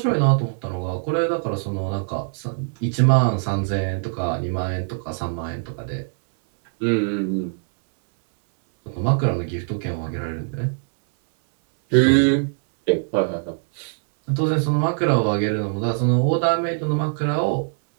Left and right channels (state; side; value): silent; left; 64 dB below the other